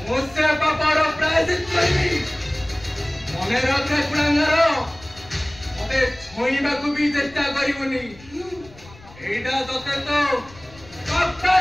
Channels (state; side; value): noise; left; rumble, 22 dB below the sound